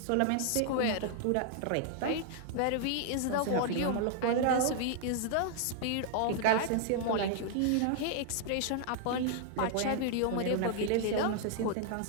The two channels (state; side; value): different; both; correlation -0.01